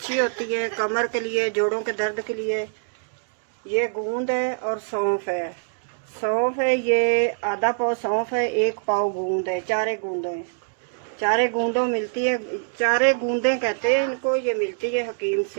होती है कमर के लिए, जोड़ों के दर्द के लिए। ये गूंद है और सौंफ है। सौंफ है, ये आधा पाव सौंफ है, 1 पाव गूंद है। 4 गूंदों है, 4 गूंदों मिलती है, 4 गूंदें कहते हैं इनको। ये मिलती है हकीम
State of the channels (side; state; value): left; silent; digital silence